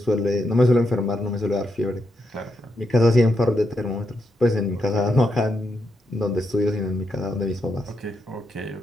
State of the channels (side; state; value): both; normal; correlation 0.82